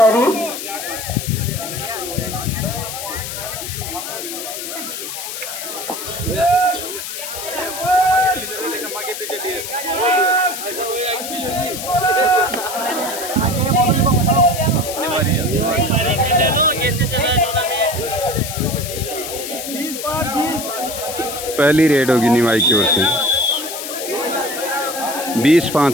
पहली रेड होगी निवाई की ओर से।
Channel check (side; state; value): left; noise; hiss, 7 dB below the sound